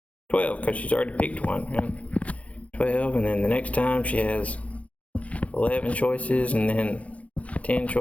12, because she's already picked one. Right? 12, and then the next time she has 11 choices, and then 10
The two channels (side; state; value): right; late; 0.064 ms